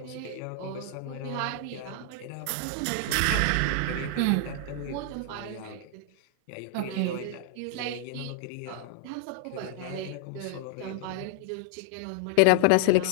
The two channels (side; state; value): both; different; correlation 0.00